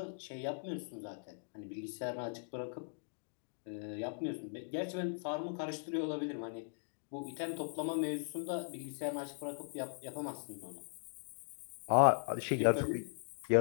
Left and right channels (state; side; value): silent; right; digital silence